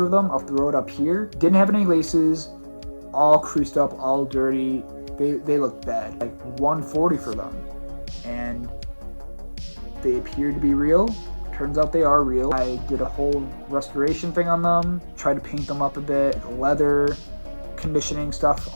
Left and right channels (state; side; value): inverted; both; correlation -1.00